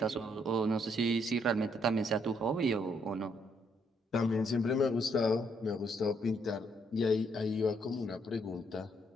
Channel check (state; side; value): normal; both; correlation 0.72